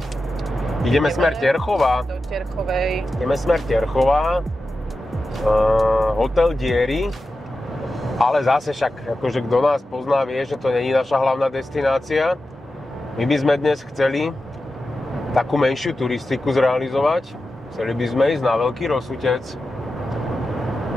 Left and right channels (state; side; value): normal; both; correlation 0.92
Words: Ideme smer Terchova. Do Terchovej. Ideme smer Terchova. Hotel Diery. Ale zase však, akože kto nás pozná, vie, že to není naša hlavná destinácia. My by sme dnes chceli takú menšiu turistiku zrealizovať. Chceli by sme ísť na Veľký Rosutec.